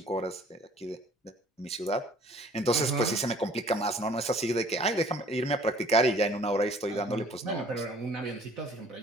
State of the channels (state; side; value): normal; both; correlation 0.54